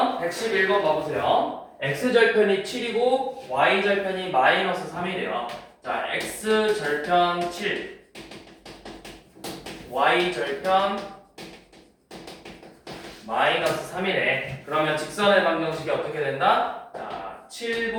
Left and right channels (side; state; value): both; identical; correlation 1.00